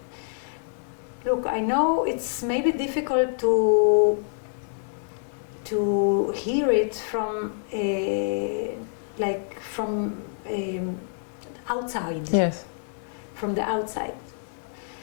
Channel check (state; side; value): silent; right; 60 dB below the other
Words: look, I know it's maybe difficult to hear it from from outside. Yes. From the outside.